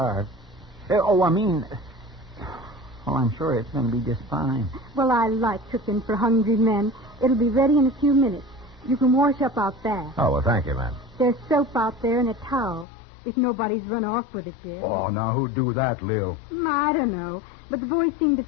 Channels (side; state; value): right; drops out; at 12.9 s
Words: Well, I'm sure it's going to be just fine. Well, I like cooking for hungry men. It'll be ready in a few minutes. You can wash up out back. Oh, well, thank you, ma'am. There's soap out there and a towel, if nobody's run off with it yet. Oh, now who'd do that, Lil? I don't know, but the boys seem to